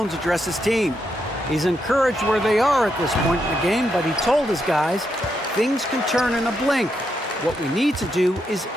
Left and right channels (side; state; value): both; normal; correlation 0.81